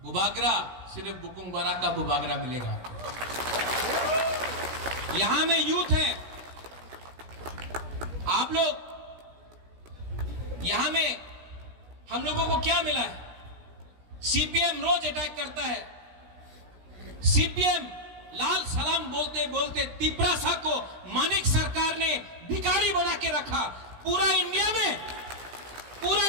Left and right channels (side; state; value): left; late; 17 ms